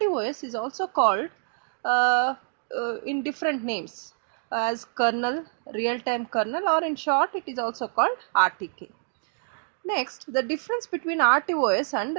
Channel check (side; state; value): left; silent; digital silence